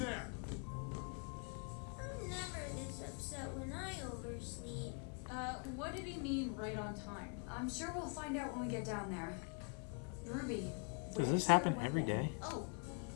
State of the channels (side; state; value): right; quieter; 37.7 dB